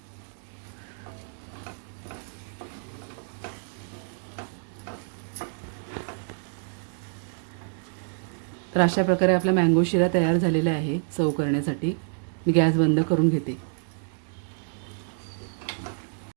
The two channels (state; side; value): silent; left; digital silence